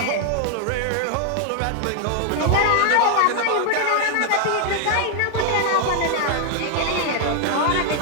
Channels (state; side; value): different; both; correlation 0.00